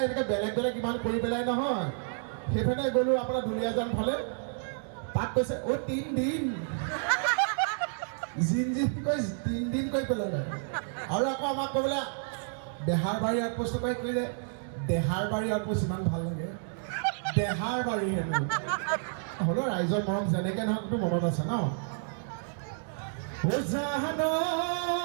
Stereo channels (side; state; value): left; silent; digital silence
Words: এনেকৈ বেলেগ বেলেগ ইমান কৰি পেলাই নহয়। সেইফালে গ'লোঁ আপোনাৰ দুলীয়াজান ফালে, তাত কৈছে অ' 3 দিন জিন কৈ 3 দিন কৰি পেলালে। আৰু আকৌ আমাক ক'বলৈ বেহাৰবাৰী আউটপোষ্ট কৰি কৰিলে, দেহাৰবাৰী আউটপোষ্ট ইমান ভাল লাগে, দেহাৰবাৰী হ'লেও ৰাইজৰ মৰম যেনেকৈ নহওকতো মনত আছে ন।